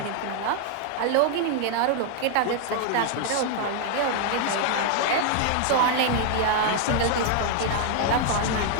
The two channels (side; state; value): both; different; correlation 0.00